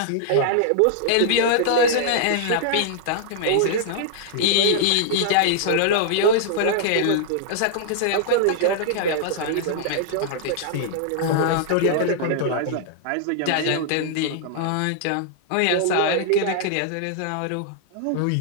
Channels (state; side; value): different; both; correlation -0.01